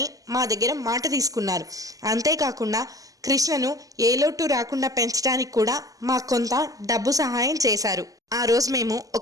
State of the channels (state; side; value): late; left; 0.17 ms